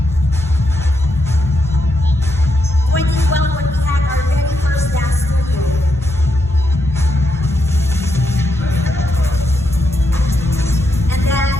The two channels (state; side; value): normal; both; correlation 0.82